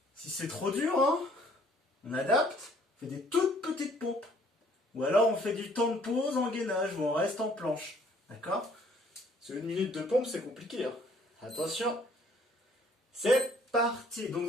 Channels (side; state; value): both; normal; correlation 0.60